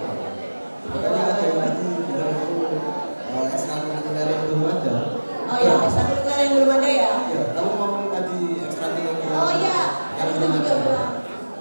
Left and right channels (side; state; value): both; inverted; correlation -1.00